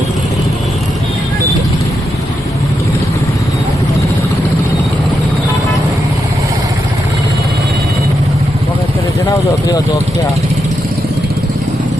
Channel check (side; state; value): both; normal; correlation 0.84